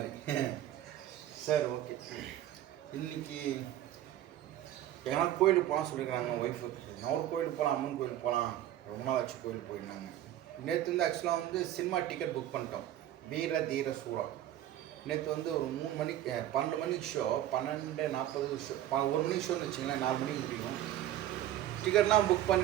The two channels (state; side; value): quieter; left; 12.7 dB